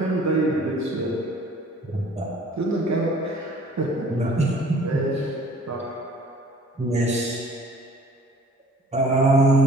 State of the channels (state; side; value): normal; both; correlation 0.52